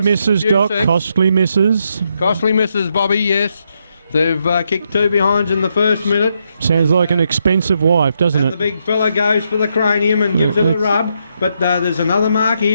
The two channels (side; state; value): both; inverted; correlation -0.79